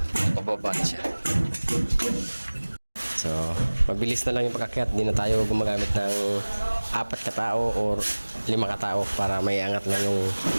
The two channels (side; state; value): both; inverted; correlation -1.00